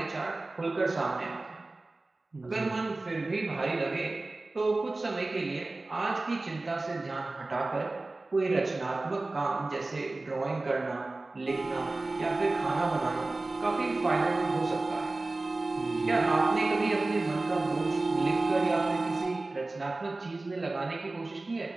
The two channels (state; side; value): quieter; left; 3.1 dB